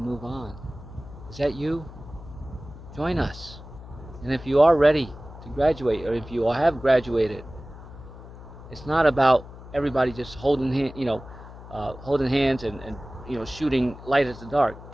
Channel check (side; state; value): left; noise; hum, 16 dB below the sound